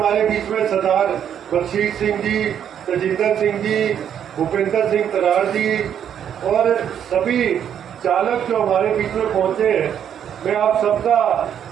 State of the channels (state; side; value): quieter; left; 9.1 dB